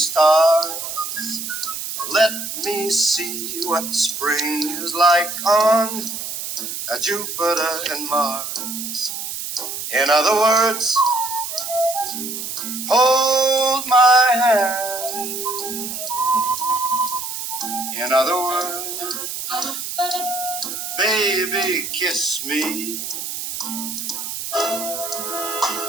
Let me see what spring is like on Jupiter and Mars. In other words, hold my hand. In other words, baby, kiss me.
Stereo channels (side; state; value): right; noise; hiss, 6 dB below the sound